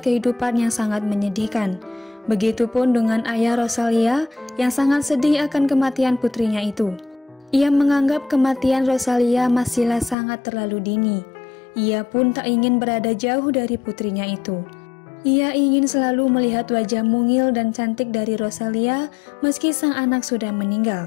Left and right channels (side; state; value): right; drops out; at 10.2 s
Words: kehidupan yang sangat menyedihkan. Begitupun dengan ayah Rosalia yang sangat sedih akan kematian putrinya itu. Ia menganggap kematian Rosalia masihlah sangat terlalu dini. Ia pun tak ingin berada jauh dari putrinya itu. Ia ingin selalu melihat wajah mungil dan cantik dari Rosalia meski sang anak sudah